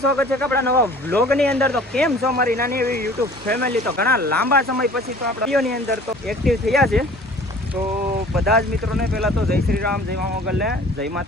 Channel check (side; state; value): both; normal; correlation 0.48